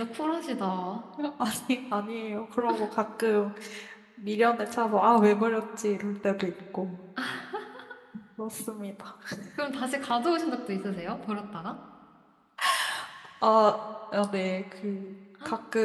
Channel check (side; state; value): both; identical; correlation 1.00